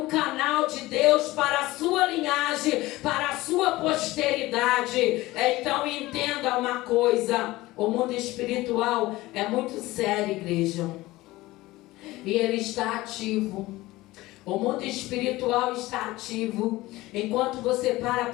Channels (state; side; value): quieter; right; 18.7 dB